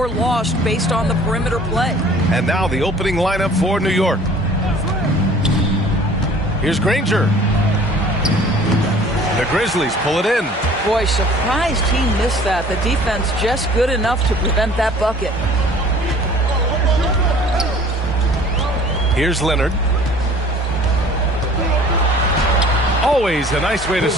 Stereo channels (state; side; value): normal; both; correlation 0.50